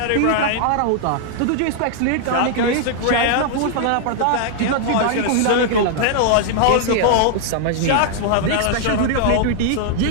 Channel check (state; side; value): different; both; correlation -0.01